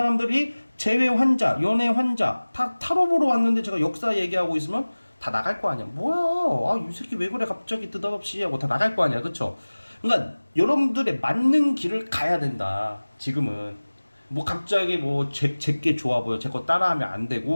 재회 환자, 연애 환자 다 타로 보러 왔는데 제가 역사 얘기하고 있으면 다 나갈 거 아니야. 뭐야? 아, 이 새끼 왜 그래 갑자기 느닷없이 하고 다 나갈 거 아니야. 그쵸? 그러니까 여러분들의 맞는 길을 가야 된다. 지금은 뭐 갑자기 뭐 제게 좋아 보여, 제 거 따라하면 안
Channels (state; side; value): inverted; both; correlation -1.00